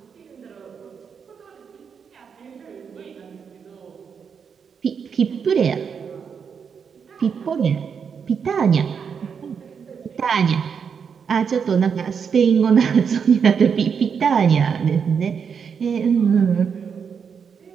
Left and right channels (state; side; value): quieter; left; 6.6 dB